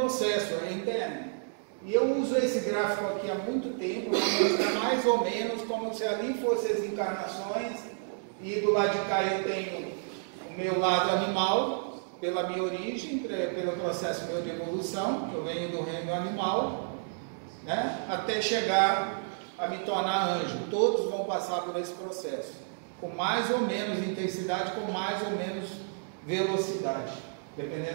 interno. E eu uso esse gráfico aqui há muito tempo, para mostrar mais ou menos como se ali fossem as encarnações, e do lado de cá eu tenho o meu lado animal, pela minha origem, pelo processo meu de evolução, que eu venho do reino animal, né, até chegar a me tornar anjo. Todos vão passar por esse processo, com mais ou menos intensidade, com mais ou menos velocidade,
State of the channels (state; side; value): silent; left; digital silence